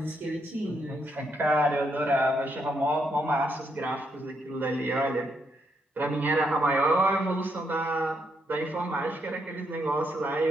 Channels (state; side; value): normal; both; correlation 0.77